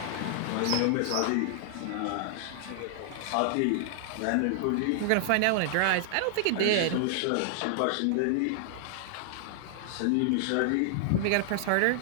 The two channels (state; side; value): different; both; correlation -0.01